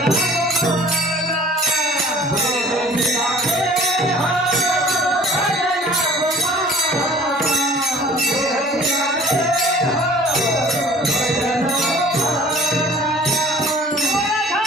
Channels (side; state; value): both; normal; correlation 0.49